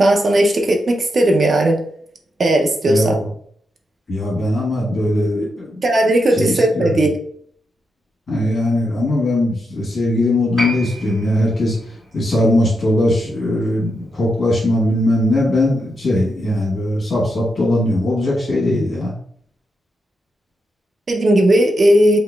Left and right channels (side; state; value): both; normal; correlation 0.84